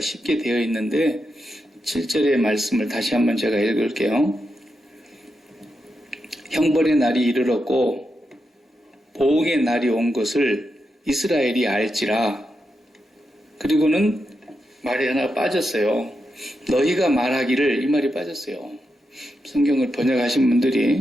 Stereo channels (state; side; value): normal; both; correlation 0.86